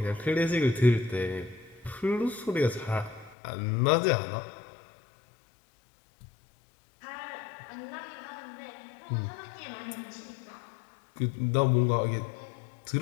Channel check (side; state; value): right; drops out; at 3.4 s